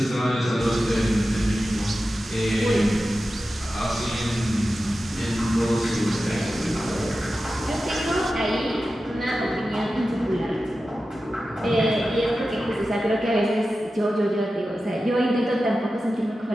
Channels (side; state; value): both; normal; correlation 0.93